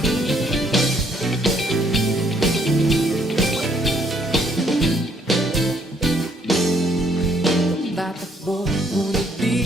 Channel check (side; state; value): both; normal; correlation 0.67